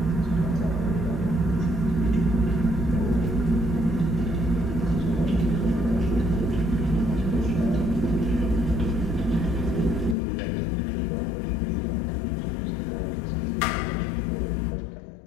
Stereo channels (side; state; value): right; drops out; at 10.2 s